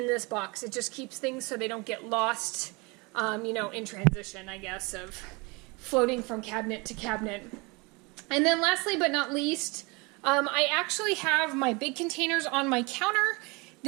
this box. It just keeps things so they don't get lost, you know, in transition, I guess, of floating from cabinet to cabinet. And then lastly but not least, I actually have my big containers on my counter.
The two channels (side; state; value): left; quieter; 27.4 dB